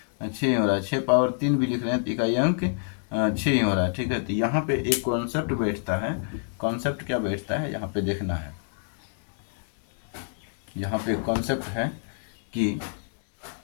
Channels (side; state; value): right; silent; digital silence